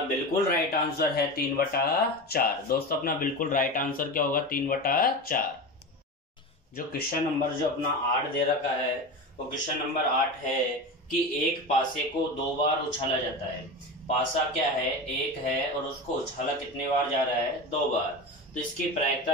बिल्कुल राइट आंसर है 3/4। दोस्तों अपना बिल्कुल राइट आंसर क्या होगा 3/4। जो क्वेश्चन नंबर जो अपना 8 दे रखा है वो क्वेश्चन नंबर 8 है कि एक पासे को 2 बार उछाला जाता है। पासा क्या है 1 है और उसको उछाला कितने बार जा रहा है 2 बार। तो इसकी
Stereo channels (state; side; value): normal; both; correlation 0.25